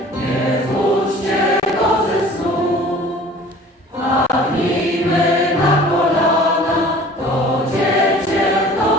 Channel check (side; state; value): both; normal; correlation 0.47